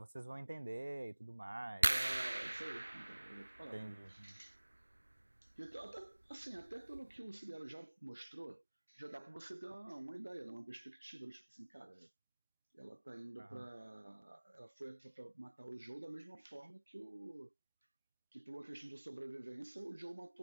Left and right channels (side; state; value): both; inverted; correlation -1.00